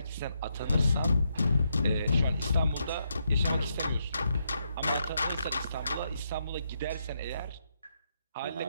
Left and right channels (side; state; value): both; inverted; correlation -0.80